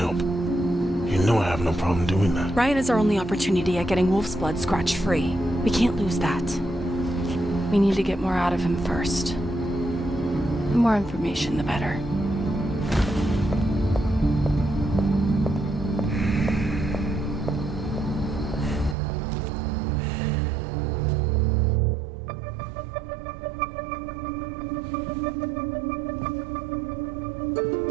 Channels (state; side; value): drops out; left; at 18.9 s